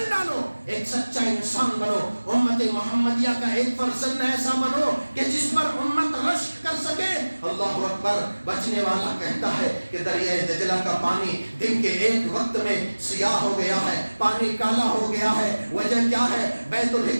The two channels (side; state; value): both; inverted; correlation -1.00